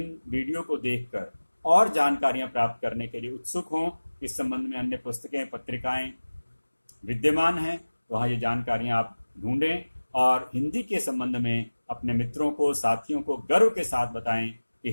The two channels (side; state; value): both; inverted; correlation -1.00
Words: वीडियो को देखकर और जानकारियां प्राप्त करने के लिए उत्सुक हों। इस संबंध में अन्य पुस्तकें, पत्रिकाएं विद्यमान हैं, वहाँ ये जानकारियां आप ढूंढें और हिंदी के संबंध में अपने मित्रों को, साथियों को गर्व के साथ बताएं कि